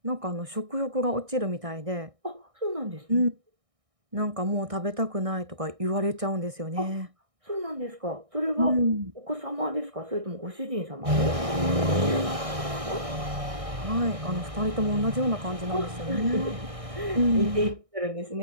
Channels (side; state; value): left; late; 1.6 ms